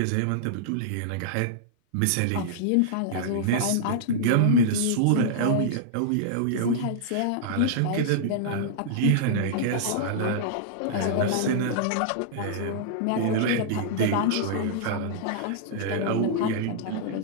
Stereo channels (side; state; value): both; different; correlation -0.01